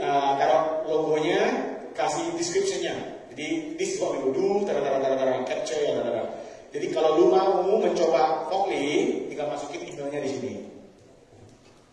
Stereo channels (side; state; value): both; identical; correlation 1.00